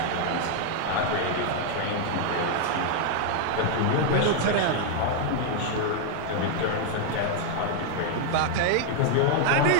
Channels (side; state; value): both; different; correlation 0.00